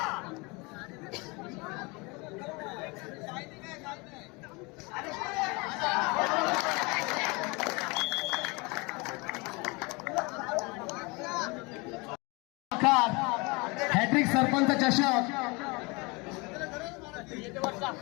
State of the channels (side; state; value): right; quieter; 27.1 dB